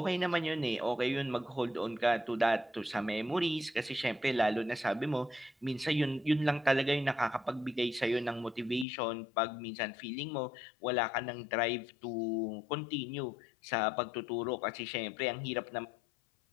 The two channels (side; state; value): right; drops out; at 8.8 s